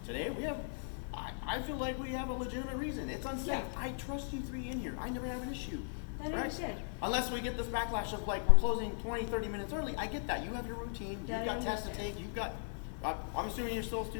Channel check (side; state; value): right; silent; 53 dB below the other